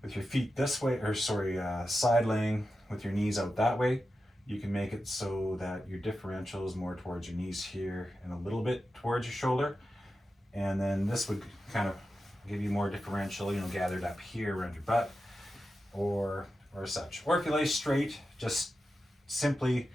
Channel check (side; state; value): both; normal; correlation 0.91